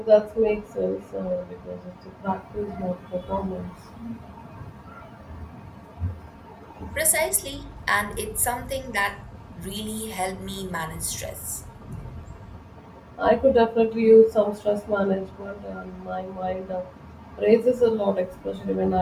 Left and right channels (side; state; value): both; identical; correlation 1.00